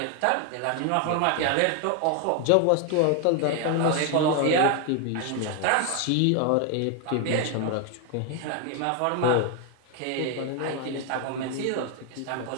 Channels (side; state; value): both; different; correlation 0.01